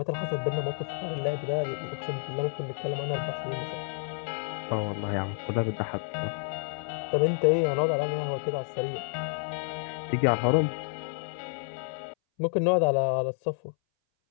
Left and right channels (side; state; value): right; silent; 58 dB below the other